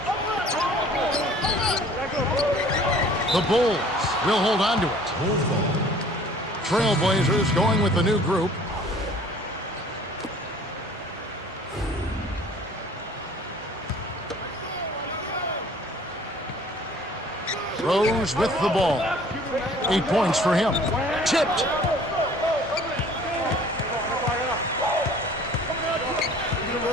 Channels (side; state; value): both; normal; correlation 0.52